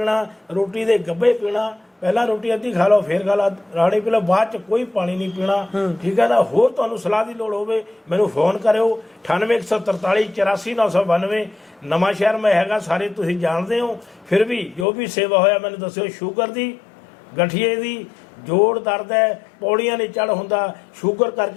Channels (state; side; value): drops out; right; at 14.9 s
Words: ਰੋਟੀ ਦੇ ਗੱਭੇ ਪੀਣਾ, ਪਹਿਲਾਂ ਰੋਟੀ ਅੱਧੀ ਖਾ ਲਓ, ਫਿਰ ਖਾ ਲਾ ਰਾਣੀ ਪੀ ਲਓ, ਬਾਅਦ 'ਚ ਕੋਈ ਪਾਣੀ ਨਹੀਂ ਪੀਣਾ। ਠੀਕ ਹੈ ਨਾ। ਹੋਰ ਤੁਹਾਨੂੰ ਸਲਾਹ ਦੀ ਲੋੜ ਹੋਵੇ, ਮੈਨੂੰ ਫੋਨ ਕਰਿਓ, 98 143 84 992। ਨਵਾਂ ਸ਼ਹਿਰ ਮੈਂ ਹੈਗਾ, ਸਾਰੇ ਤੁਸੀਂ ਜਾਣਦੇ ਹੋ। ਫਿਰ ਵੀ ਜੋ ਵੀ ਸੇਵਾ ਹੋਇਆ ਮੈਨੂੰ ਦੱਸਿਓ। ਸ਼ੂਗਰ ਦੀ, ਗਠੀਏ ਦੀ ਜੋੜ ਦਰਦ ਹੈ, ਪੌੜੀਆਂ ਨਹੀਂ ਚੜ੍ਹ ਹੁੰਦਾ, ਸ਼ੂਗਰ